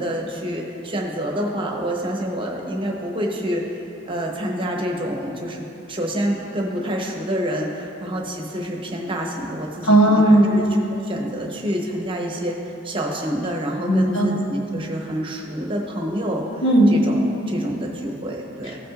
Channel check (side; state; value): both; normal; correlation 0.64